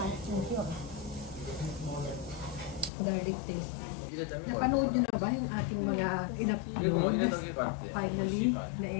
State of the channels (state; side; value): drops out; right; at 2.9 s